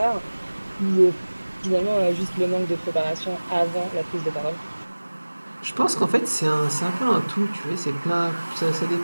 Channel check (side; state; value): both; inverted; correlation -1.00